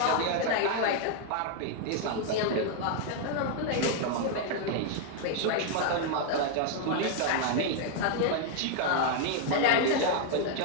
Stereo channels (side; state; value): both; different; correlation 0.00